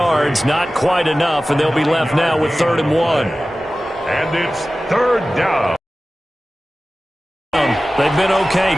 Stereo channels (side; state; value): both; normal; correlation 0.96